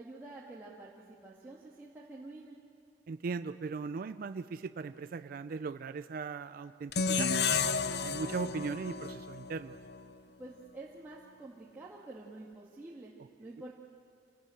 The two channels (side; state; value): both; normal; correlation 0.19